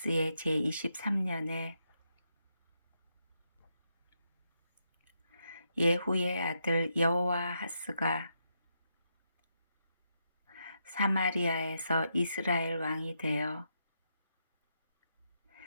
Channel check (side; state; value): both; inverted; correlation -0.81